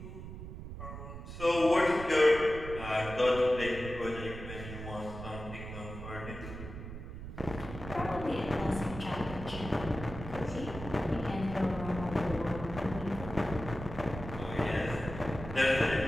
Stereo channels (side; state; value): right; noise; rumble, 10 dB below the sound